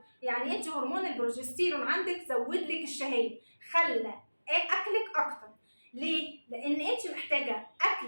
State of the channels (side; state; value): both; inverted; correlation -1.00